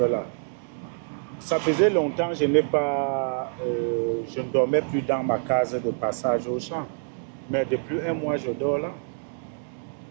là. Ça faisait longtemps que je ne dormais plus dans ma case de passage au champ. Mais depuis 1 mois, je dors là.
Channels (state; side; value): silent; left; digital silence